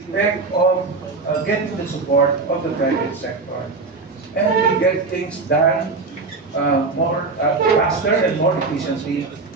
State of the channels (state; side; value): quieter; left; 4.0 dB